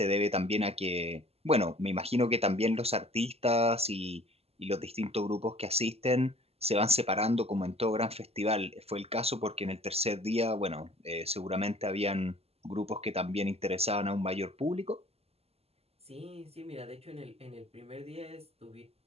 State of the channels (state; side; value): late; left; 0.29 ms